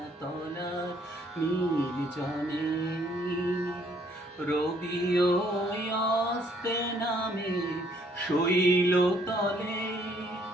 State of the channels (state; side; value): normal; both; correlation 0.65